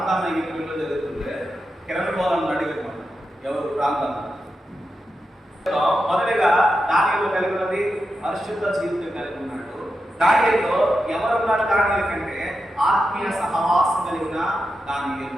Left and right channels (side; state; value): both; normal; correlation 0.89